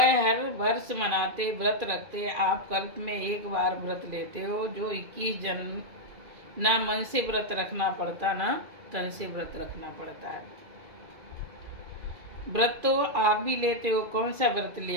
हर वर्ष मनाते, व्रत रखते। आप कल्प में एक बार व्रत लेते हो, जो 21 जन्म ना मन से व्रत रखना पड़ता ना तन से व्रत रखना पड़ता है। व्रत तो आप भी लेते हो। कौन सा व्रत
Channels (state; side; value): late; left; 2.4 ms